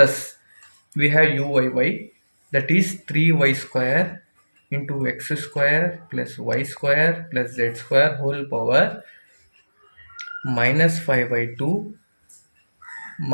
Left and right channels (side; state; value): both; inverted; correlation -1.00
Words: we have uyy, that is 3y square into x square plus y square plus z square whole power minus 5 by 2